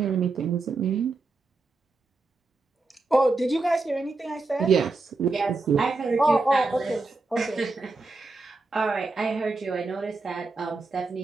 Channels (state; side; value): quieter; left; 3.5 dB